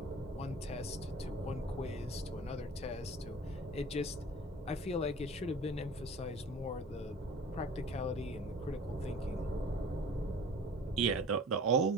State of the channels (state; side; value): normal; both; correlation 0.43